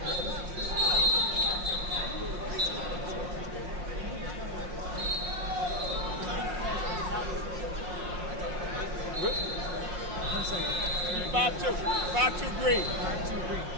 Good. 5-2. 5-2 green. 5-2 green.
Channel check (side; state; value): left; late; 5.6 ms